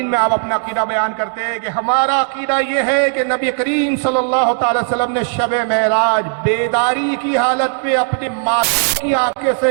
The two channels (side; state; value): left; silent; digital silence